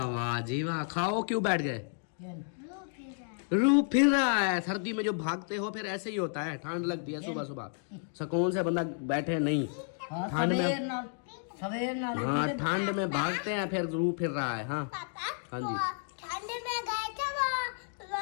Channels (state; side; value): silent; right; 57 dB below the other